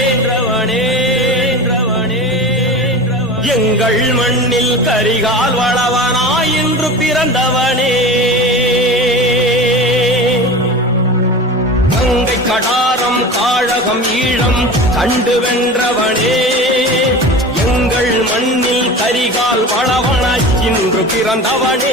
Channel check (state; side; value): normal; both; correlation 0.33